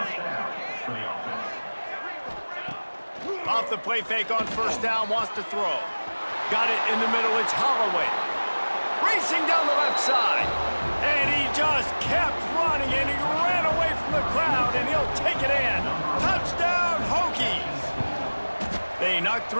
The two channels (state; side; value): inverted; both; correlation -1.00